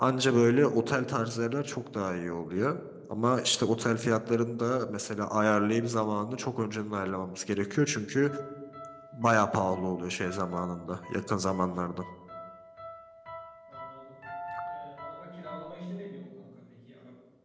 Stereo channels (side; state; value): both; identical; correlation 1.00